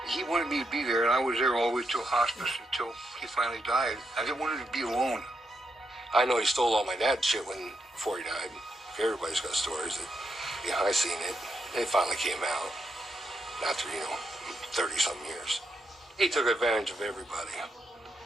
He wanted me to be there, and I was there all the way till hospice until he finally died. I didn't want him to be alone. I know he stole all my dad's shit before he died. Everybody's got stories that, yeah, I seen it. It finally came out after, 30-something years. He took advantage of everybody.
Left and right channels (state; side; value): normal; both; correlation 0.82